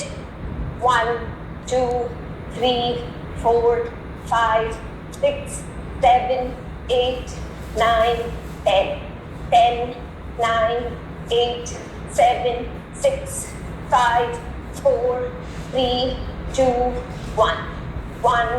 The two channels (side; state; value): both; identical; correlation 1.00